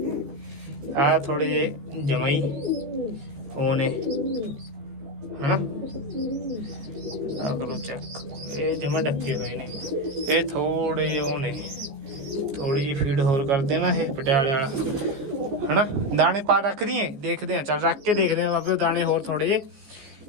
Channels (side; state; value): left; late; 14 ms